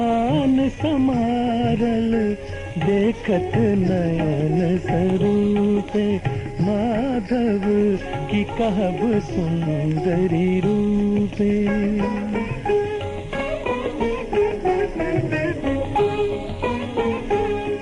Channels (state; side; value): identical; both; correlation 1.00